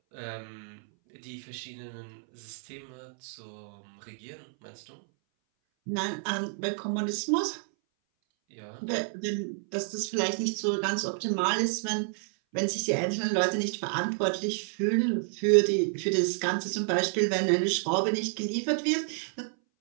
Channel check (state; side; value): silent; left; 58 dB below the other